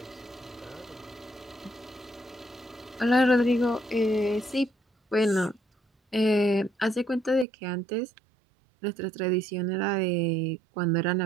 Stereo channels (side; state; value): left; drops out; at 7.5 s